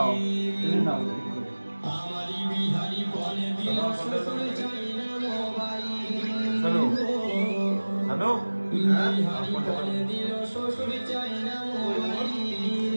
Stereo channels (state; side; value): inverted; both; correlation -1.00